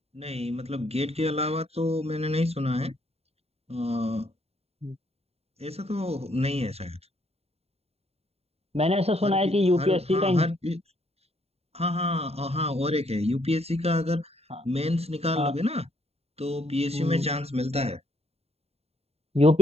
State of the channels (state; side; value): late; left; 0.30 ms